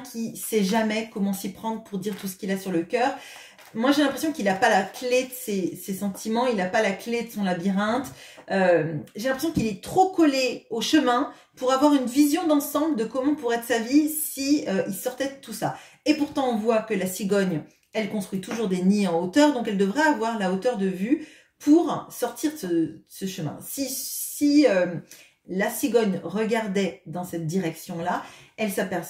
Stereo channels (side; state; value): both; identical; correlation 1.00